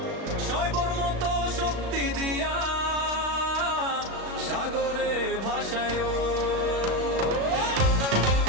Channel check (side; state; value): left; late; 36 ms